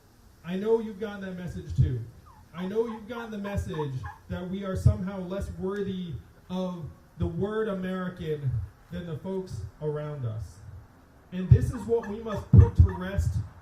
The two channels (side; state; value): both; identical; correlation 1.00